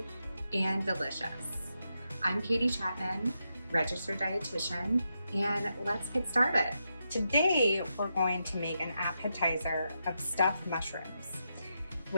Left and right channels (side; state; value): both; inverted; correlation -0.85